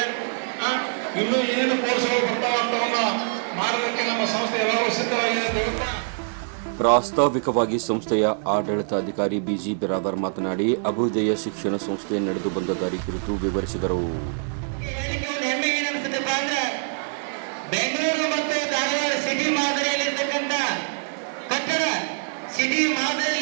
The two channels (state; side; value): silent; left; digital silence